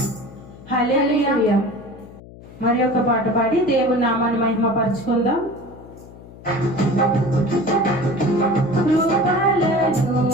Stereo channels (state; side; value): noise; left; hum, 19 dB below the sound